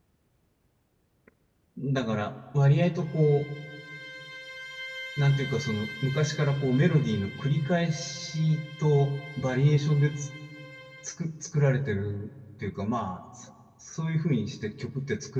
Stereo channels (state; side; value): identical; both; correlation 1.00